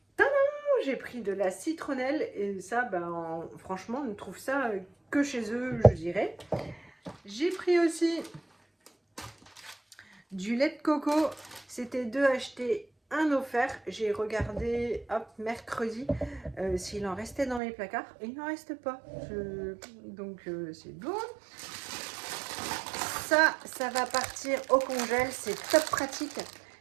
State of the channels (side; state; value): left; drops out; at 17.6 s